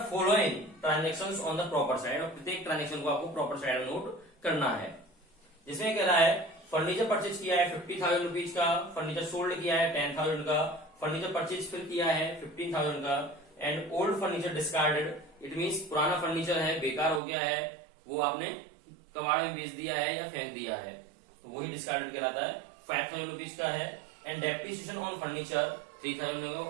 following transactions on the proper side. और प्रत्येक ट्रांजेक्शन को आपको प्रॉपर साइड नोट करना है. जिसमें कह रहा है फर्नीचर परचेज किया है 50,000 रुपीज का, फर्नीचर सोल्ड किया है 10,000 का, फर्नीचर परचेज फिर किया है 15,000 का, and old furniture discarded. It means पुराना फर्नीचर है, बेकार हो गया है, वो आपने कबाड़ में बेच दिया है या फेंक दिया है, तो वही डिस्कार्डेड कहलाता है. 5,000 रुपीज का है. एंड डेप्रिसिएशन ऑन फर्नीचर 3,000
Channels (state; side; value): drops out; left; at 17.2 s